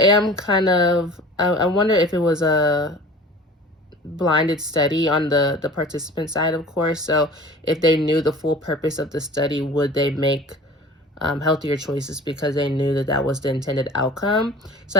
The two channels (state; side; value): normal; both; correlation 0.42